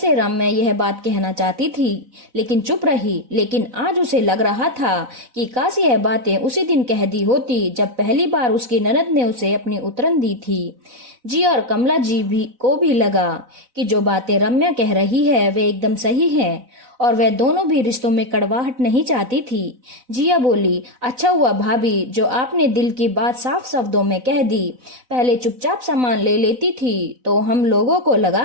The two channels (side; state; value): left; late; 4.0 ms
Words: रम्या यह बात कहना चाहती थी लेकिन चुप रही। लेकिन आज उसे लग रहा था कि काश यह बातें उसी दिन कह दी होती जब पहली बार उसकी ननद ने उसे अपनी उतरन दी थी। जी और कमला जी भी को भी लगा कि जो बातें रम्या कह रही है वे एकदम सही है और वह दोनों भी रिश्तों में कड़वाहट नहीं चाहती थी। जिया बोली, अच्छा हुआ भाभी जो आपने दिल की बात साफ शब्दों में कह दी। पहले चुपचाप सामान ले लेती थी तो हम लोगों को